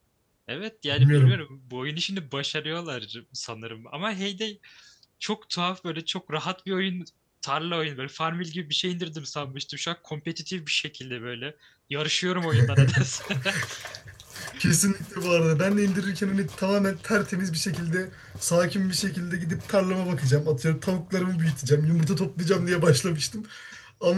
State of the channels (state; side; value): identical; both; correlation 1.00